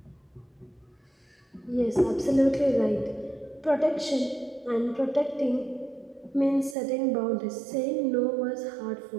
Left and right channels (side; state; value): left; drops out; at 6.8 s